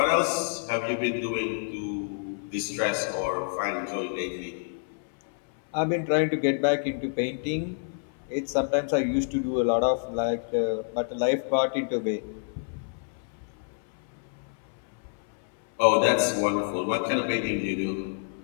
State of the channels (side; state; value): right; silent; 59 dB below the other